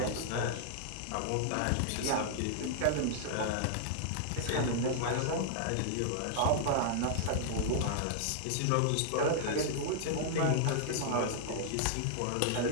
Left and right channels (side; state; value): both; different; correlation -0.01